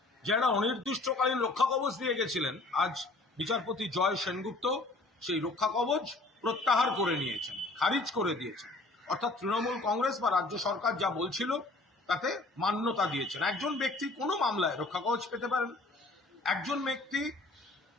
যে একটা অনির্দিষ্টকালীন রক্ষা কবচ দিয়ে গেছিলেন, আজ বিচারপতি জয় সেনগুপ্ত সেই রক্ষা কবচ প্রত্যাহার করে নিয়েছেন, খারিজ করে দিয়েছেন। অর্থাৎ তৃণমূল কংগ্রেস বা রাজ্য সরকার যা বলছিল তাতে মান্যতা দিয়েছেন। একজন ব্যক্তি কোনো মামলায় রক্ষা কবচ পেতে পারেন, একজন ব্যক্তি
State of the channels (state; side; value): quieter; right; 3.1 dB